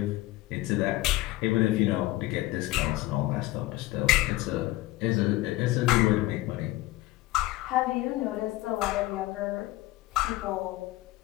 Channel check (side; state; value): right; quieter; 18.0 dB